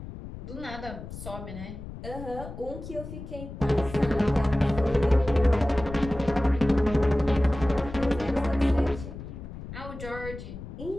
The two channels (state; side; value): noise; left; rumble, 11 dB below the sound